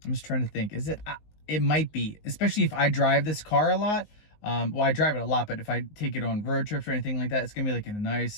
I'm just trying to think. Is it? It might be, especially if I drive this car a lot. Well, I drive it a lot, but if I take it on road trips or anything like that, it's gonna be like a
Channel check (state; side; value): late; right; 19 ms